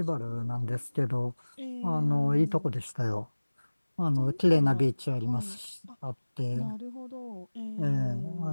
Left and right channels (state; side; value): inverted; both; correlation -1.00